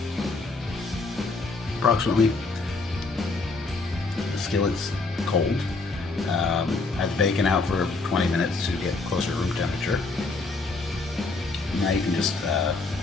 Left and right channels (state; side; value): quieter; right; 3.6 dB